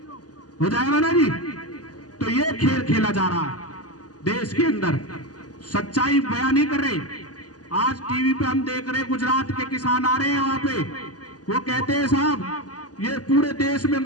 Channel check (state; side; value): late; right; 0.68 ms